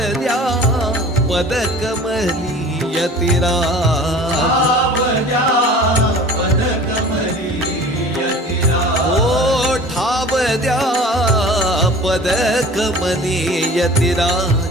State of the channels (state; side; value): normal; both; correlation 0.43